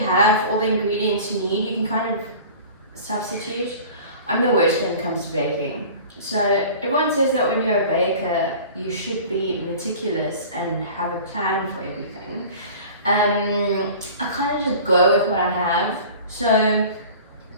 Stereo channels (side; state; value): both; inverted; correlation -0.41